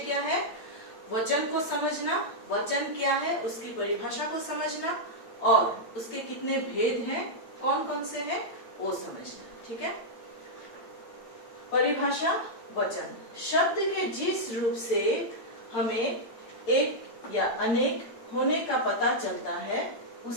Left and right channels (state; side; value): late; right; 8.9 ms